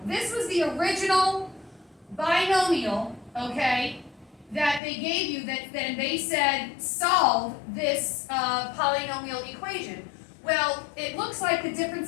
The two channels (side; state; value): right; drops out; at 4.8 s